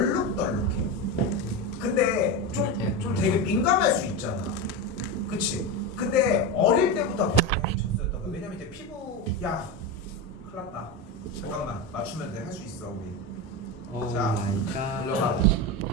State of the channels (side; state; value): both; normal; correlation 0.18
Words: 근데 좀 되게 민감할 수 있잖아. 그치? 근데 어릴 때부터 젖소였던 거야. 왜냐면 이제 피부 야 큰일 났다. 잠깐만 맞추면 돼. 할 수 있어 우리. 오 자, 마이 갓. 올라가.